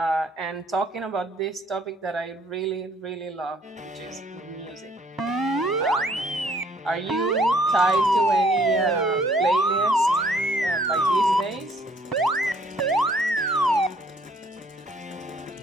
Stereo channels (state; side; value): normal; both; correlation 0.62